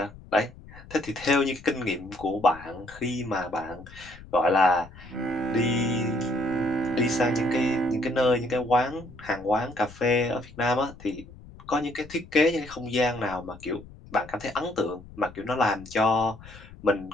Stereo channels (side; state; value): left; noise; rumble, 19 dB below the sound